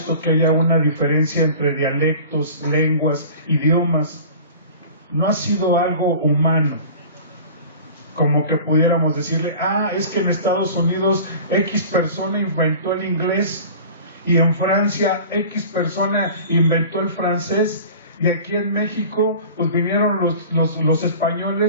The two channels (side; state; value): both; inverted; correlation -0.40